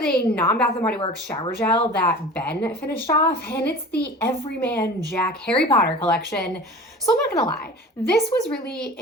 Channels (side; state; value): both; normal; correlation 0.39